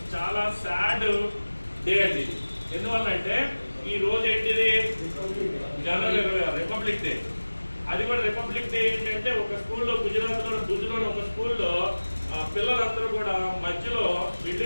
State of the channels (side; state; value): both; inverted; correlation -1.00